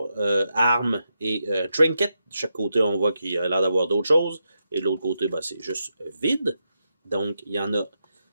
armes et trinket. De chaque côté, on voit qu'il a l'air d'avoir d'autres choses. Et de l'autre côté, ben, c'est juste vide. Donc, il y en a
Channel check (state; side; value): inverted; both; correlation -0.85